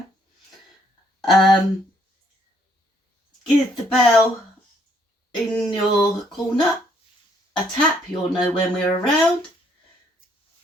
Give the bell in your corner a tap, you'll know when we're around,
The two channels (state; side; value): normal; both; correlation 0.68